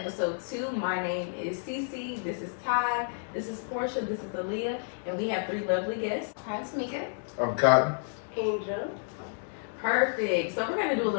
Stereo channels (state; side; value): silent; right; digital silence